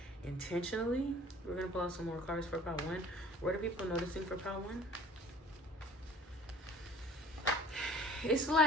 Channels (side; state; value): both; normal; correlation 0.49